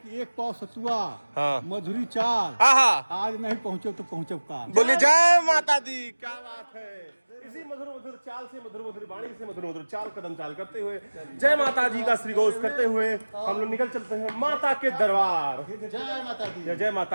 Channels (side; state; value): both; inverted; correlation -1.00